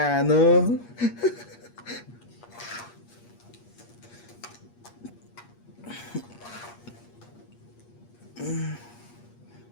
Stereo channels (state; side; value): late; right; 8.4 ms